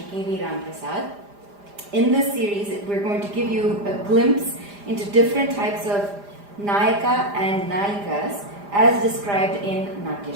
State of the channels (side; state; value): left; late; 5.0 ms